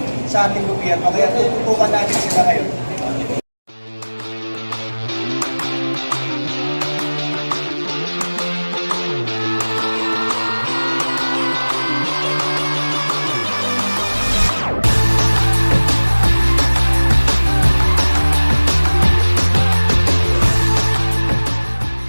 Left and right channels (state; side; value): inverted; both; correlation -1.00